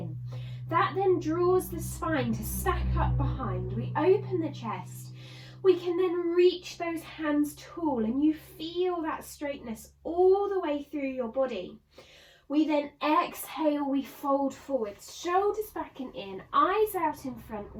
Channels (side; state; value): both; identical; correlation 1.00